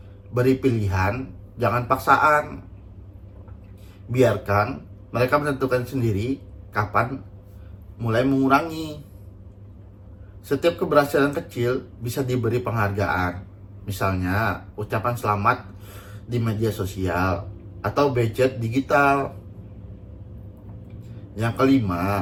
beri pilihan, jangan paksaan. Biarkan mereka menentukan sendiri kapan mulai mengurangi. Setiap keberhasilan kecil bisa diberi penghargaan. Misalnya, ucapan selamat di media sosial atau budget digital. Yang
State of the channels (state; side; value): identical; both; correlation 1.00